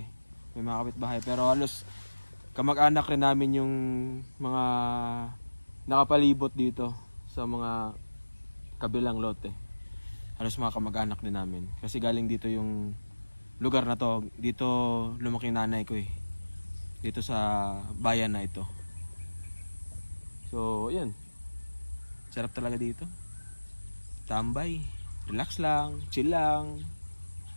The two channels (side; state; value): both; inverted; correlation -1.00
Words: May mga kapitbahay. Pero halos kamag-anak rin namin yung mga nakapalibot dito sa mga kabilang lote. Halos mga kamag-anak din namin. Kasi galing dito yung lugar na to. Dito lumaki nanay ko eh. Dito sa bayan na ito. So, ayan. Sarap talaga dito. Tambay. Relax lang. Chill lang.